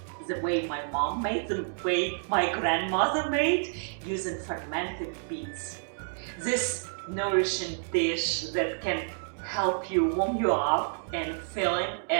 the way my mom made, the way my grandmother made, using fermented beets. This nourishing dish that can help you warm you up and filling,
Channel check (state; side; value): silent; left; digital silence